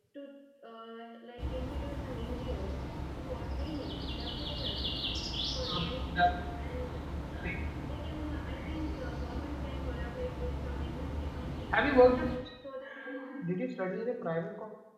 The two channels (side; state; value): both; identical; correlation 1.00